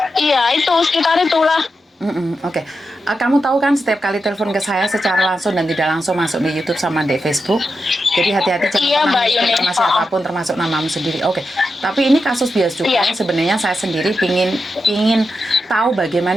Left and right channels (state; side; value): normal; both; correlation 0.88